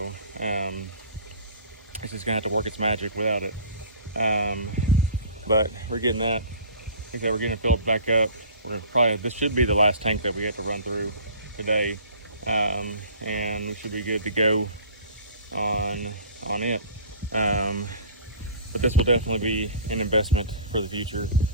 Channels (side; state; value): both; inverted; correlation -0.44